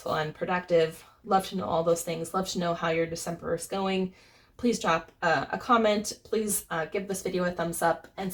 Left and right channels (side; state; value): both; identical; correlation 1.00